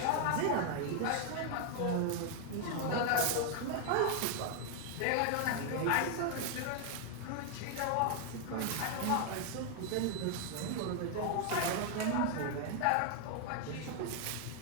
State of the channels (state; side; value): different; both; correlation 0.00